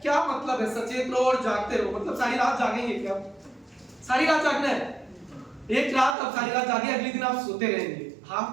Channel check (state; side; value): drops out; left; at 6.2 s